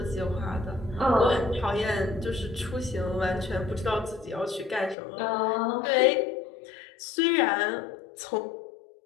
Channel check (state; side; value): drops out; right; at 5.0 s